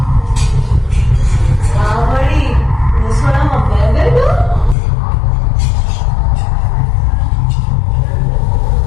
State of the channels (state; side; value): drops out; right; at 4.8 s